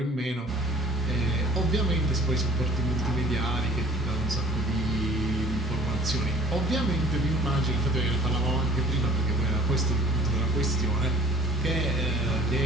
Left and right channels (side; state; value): both; normal; correlation 0.51